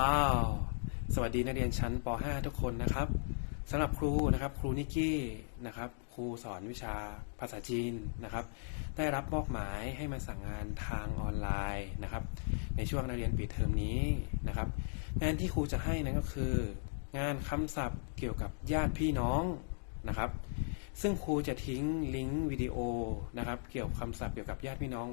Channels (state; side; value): silent; right; digital silence